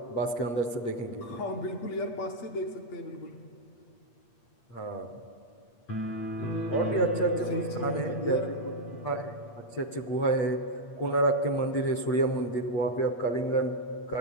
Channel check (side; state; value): right; late; 8.5 ms